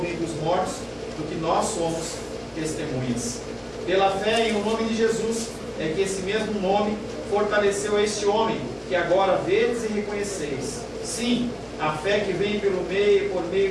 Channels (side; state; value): both; identical; correlation 1.00